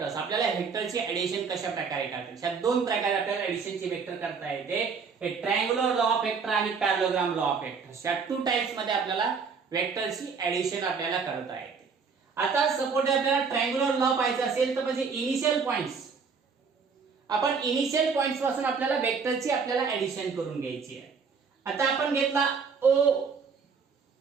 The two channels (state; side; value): quieter; left; 5.5 dB